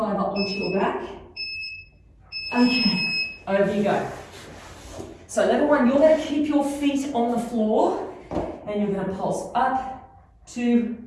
onto your back. Okay, over you go. So level 1, you're going to keep your feet on the floor, and you're going to pulse up, 2,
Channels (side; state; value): both; identical; correlation 1.00